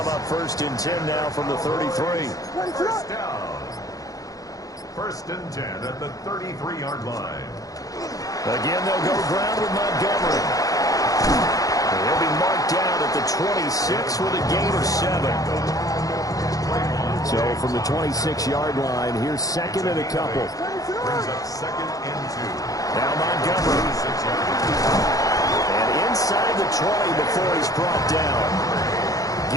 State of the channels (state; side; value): late; right; 0.17 ms